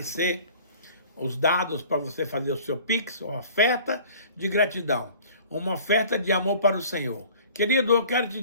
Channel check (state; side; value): inverted; both; correlation -0.48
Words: os dados para você fazer o seu Pix, uma oferta de gratidão, uma oferta de amor para o Senhor. Querido, eu quero te